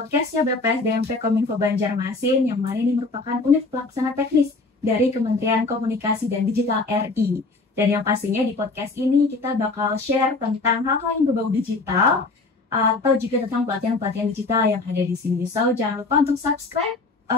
BPS DMP Kominfo Banjarmasin, yang mana ini merupakan unit pelaksana teknis dari Kementerian Komunikasi dan Digital RI. Dan yang pastinya di podcast ini kita bakal share tentang hal-hal yang berbau digital, atau juga tentang pelatihan-pelatihan digital yang ada di sini. So, jangan lupa untuk subscribe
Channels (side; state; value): right; quieter; 3.6 dB